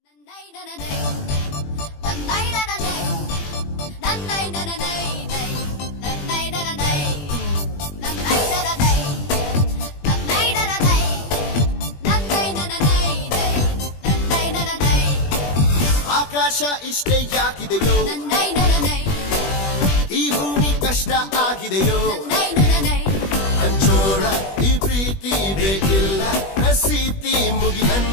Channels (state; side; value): late; right; 21 ms